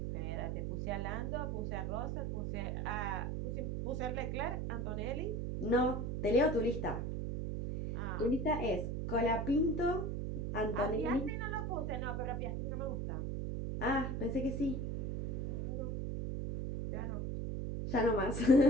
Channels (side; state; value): right; noise; hum, 2 dB below the sound